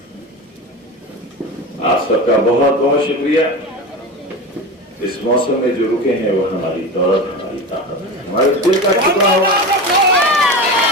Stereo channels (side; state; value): both; normal; correlation 0.26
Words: आप सबका बहुत बहुत शुक्रिया। इस मौसम में जो रुके हैं वो हमारी दौलत, हमारी ताकत है, हमारे दिल का टुकड़ा हुआ,